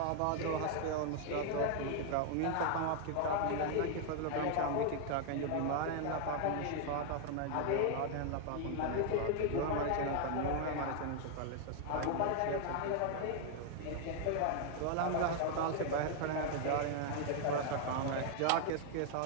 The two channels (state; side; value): different; both; correlation 0.00